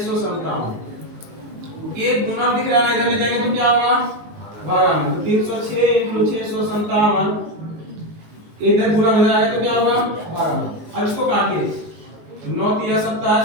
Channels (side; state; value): left; late; 19 ms